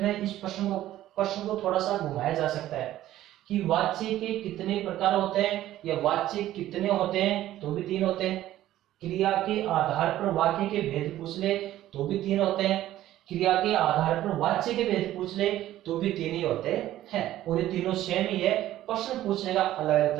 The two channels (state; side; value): quieter; left; 13.8 dB